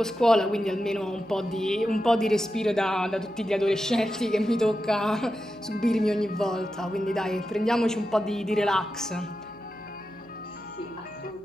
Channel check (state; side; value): noise; right; hum, 26 dB below the sound